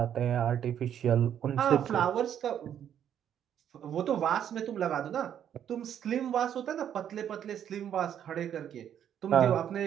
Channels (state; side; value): quieter; left; 9.6 dB